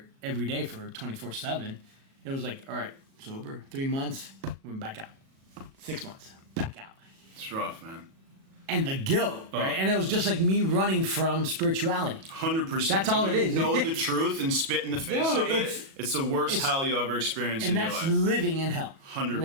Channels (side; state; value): left; late; 37 ms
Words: every day for 24/7. It was like, all right, sober, 3 months, went back out. 6 months, back out. It's rough, man. And the guilt, right? And it was just like me running from spirituality. 100%. That's all it is. Know the truth and spit in the face of it. It's the worst hell you ever experienced in your life. And that's living in hell. 100%.